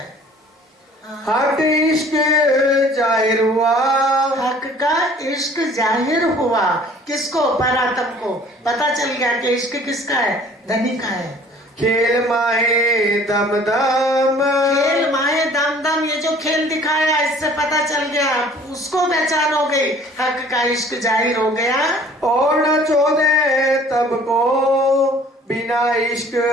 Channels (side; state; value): both; normal; correlation 0.52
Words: हक इश्क जाहिर हुआ, हक का इश्क जाहिर हुआ। किसको? परात्म को पता चल गया कि इश्क किसका है? धनी का है। खेल माहे दम दम, खेल माहे दम दम, ये जो खेल दिखाया इससे पता चल गया, उसको पहचान हो गई, हक का इश्क जाहिर हो गया। और न चोदे तब को बिना इश्क